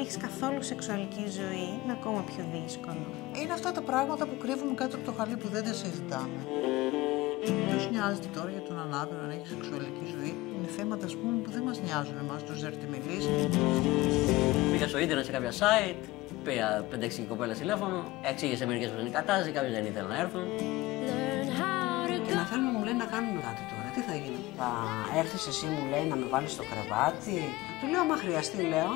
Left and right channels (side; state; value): right; quieter; 19.2 dB